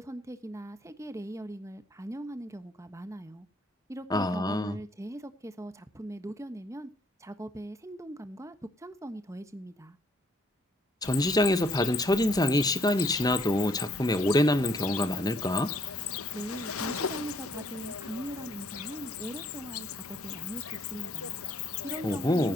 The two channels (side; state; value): both; normal; correlation 0.65